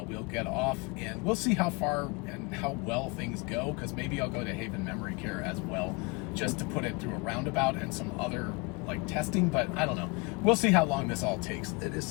we'll get off, and we'll see how far and how well things go, because maybe I'll go to Haven Memory Care as well, just to put it through a roundabout and some other testing, but I don't know. We'll see how long this all takes. It is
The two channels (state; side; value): quieter; right; 28.3 dB